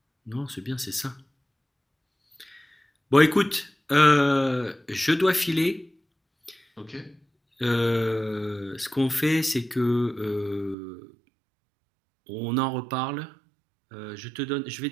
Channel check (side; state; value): left; drops out; at 10.8 s